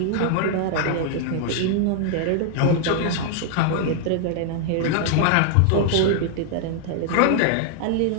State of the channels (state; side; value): different; both; correlation 0.00